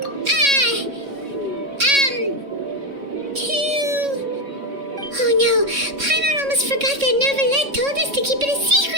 Oh no, Paimon almost forgot that Neverlet told us to keep it a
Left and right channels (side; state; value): left; late; 3.6 ms